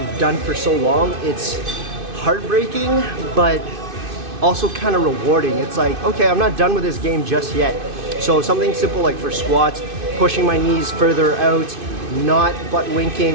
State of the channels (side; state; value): left; late; 2.5 ms